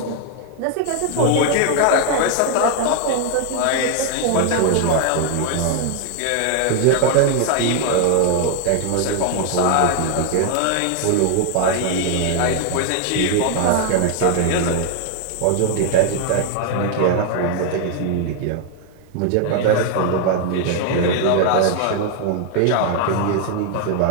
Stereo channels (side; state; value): both; different; correlation 0.00